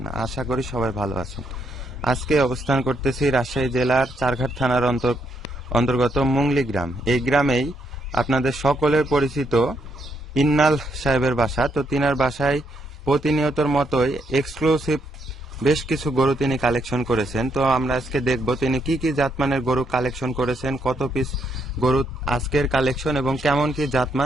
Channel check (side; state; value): both; normal; correlation 0.76